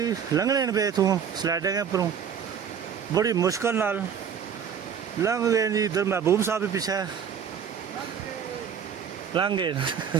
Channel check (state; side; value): quieter; left; 7.6 dB